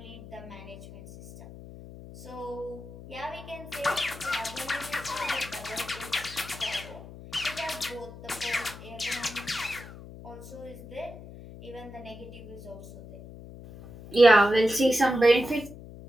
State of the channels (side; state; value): left; noise; hum, 15 dB below the sound